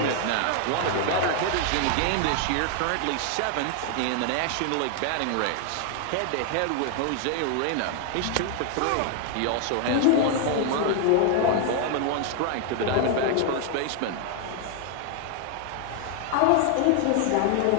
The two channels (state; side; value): different; both; correlation 0.00